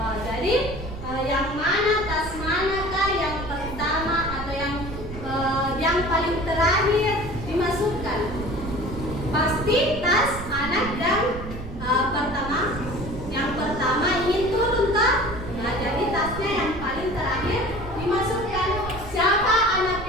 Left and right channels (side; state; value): right; noise; rumble, 10 dB below the sound